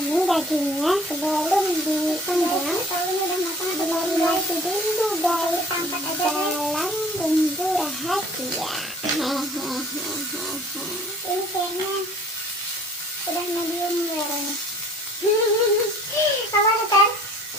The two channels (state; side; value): normal; both; correlation 0.52